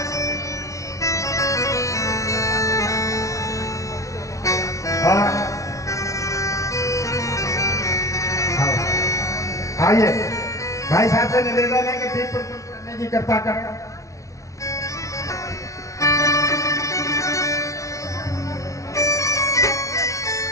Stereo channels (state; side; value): late; right; 0.15 ms